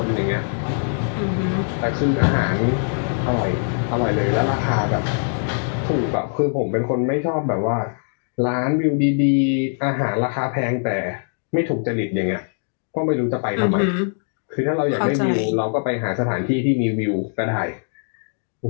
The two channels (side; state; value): right; silent; digital silence